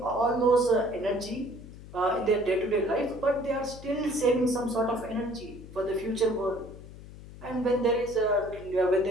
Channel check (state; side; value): noise; left; hum, 16 dB below the sound